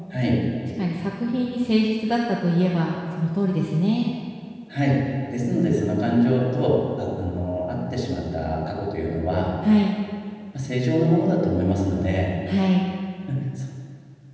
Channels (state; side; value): identical; both; correlation 1.00